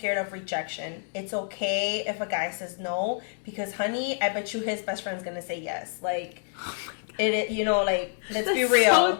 of rejection. It's okay if a guy says no because, honey, I bet you his best friend's gonna say yes. Like, let's be real. That's so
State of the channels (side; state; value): right; silent; digital silence